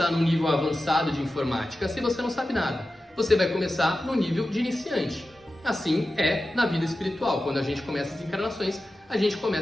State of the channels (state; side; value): normal; both; correlation 0.93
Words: no nível avançado de informática se você não sabe nada. Você vai começar no nível de iniciante. Assim é na vida espiritual. Quando a gente começa as encarnações, a gente